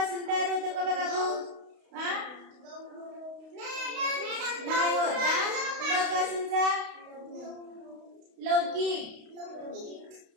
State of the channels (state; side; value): late; left; 32 ms